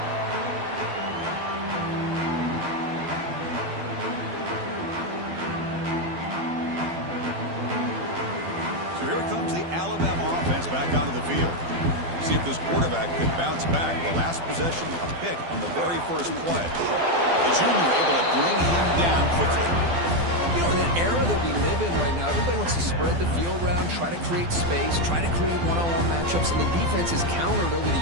Back onto the field. See if this quarterback could bounce back. The last possession, a pick on the very first play. The junior able to bring him down quickly. You know, in that era that we live in right now, everybody wants to spread the field around, try to create space, try to create one-on-one matchups, and the defense is countered over the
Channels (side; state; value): left; late; 12 ms